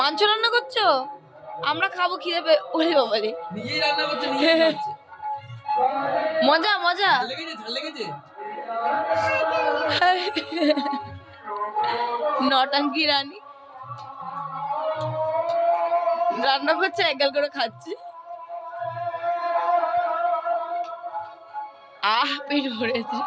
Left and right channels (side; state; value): both; identical; correlation 1.00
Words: রান্না করছো? আমরা খাবো, খিদে পেয়ে। ওরে বাবা রে, নিজেই রান্না করছে নিজেই খাচ্ছে। মজা মজা। ঝাল লেগেছে নটাঙ্কি রানী রান্না করছে, একগাল করে খাচ্ছি। পেট ভরেছে।